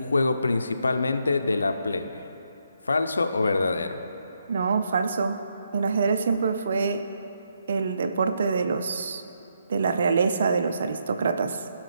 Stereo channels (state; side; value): inverted; both; correlation -0.78